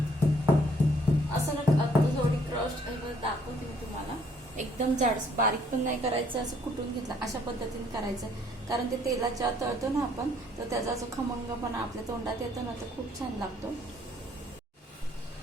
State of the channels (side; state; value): both; normal; correlation 0.64